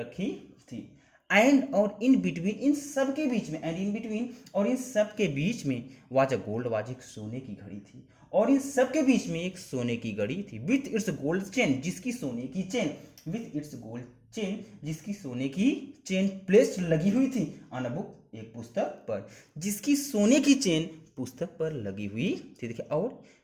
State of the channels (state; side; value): identical; both; correlation 1.00